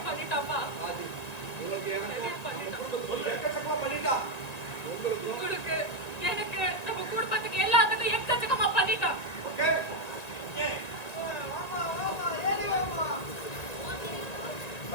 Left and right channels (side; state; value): right; late; 1.8 ms